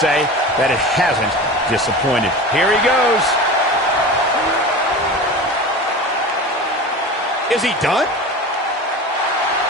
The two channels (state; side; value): normal; both; correlation 0.32